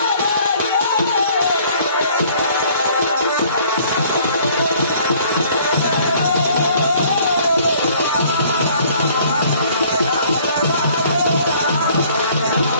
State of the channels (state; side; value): inverted; both; correlation -0.57